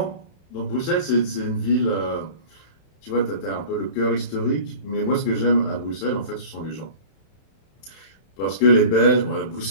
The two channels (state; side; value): late; right; 31 ms